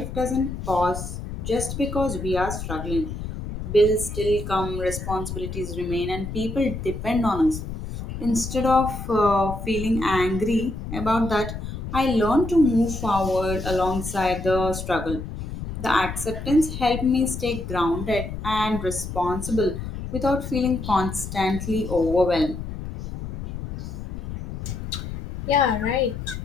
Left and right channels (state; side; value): noise; left; rumble, 7 dB below the sound